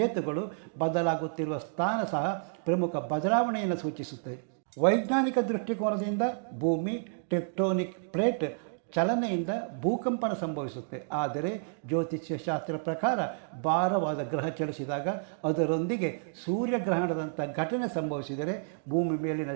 ಬದಲಾಗುತ್ತಿರುವ ಸ್ಥಾನ ಸಹ ಪ್ರಮುಖ ಬದಲಾವಣೆಯನ್ನು ಸೂಚಿಸುತ್ತೆ. ವೈಜ್ಞಾನಿಕ ದೃಷ್ಟಿಕೋನದಿಂದ ಭೂಮಿ ಟೆಕ್ಟೋನಿಕ್ ಪ್ಲೇಟ್ ಚಲನೆಯಿಂದ ಭೂಕಂಪನ ಸಂಭವಿಸುತ್ತೆ. ಆದರೆ ಜ್ಯೋತಿಷ್ಯ ಶಾಸ್ತ್ರ ಪ್ರಕಾರ ಭಾರವಾದ ಗ್ರಹ ಚಲಿಸಿದಾಗ ಅದರೊಂದಿಗೆ ಸೂರ್ಯಗ್ರಹಣದಂಥ ಘಟನೆ ಸಂಭವಿಸಿದರೆ ಭೂಮಿ ಮೇಲಿನ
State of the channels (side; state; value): left; silent; digital silence